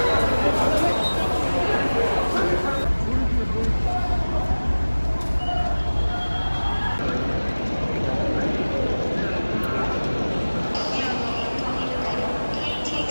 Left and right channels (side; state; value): both; inverted; correlation -1.00